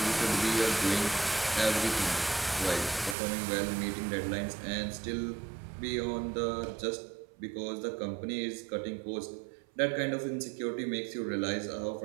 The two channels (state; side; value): drops out; left; at 3.2 s